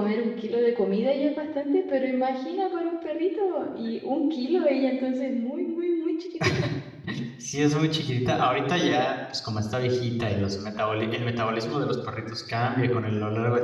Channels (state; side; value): identical; both; correlation 1.00